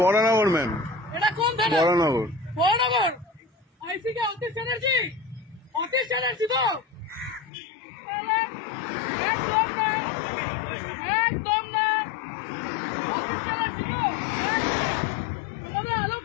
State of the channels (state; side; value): drops out; right; at 7.5 s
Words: বরানগর ম্যাম। এটা কোন থানা? বরানগর। বরানগর আইসি কে অতীশ চ্যাটার্জি? অতীশ চ্যাটার্জি তো একদম না, একদম না। অতীশ চ্যাটার্জি তো আমাদের আলোক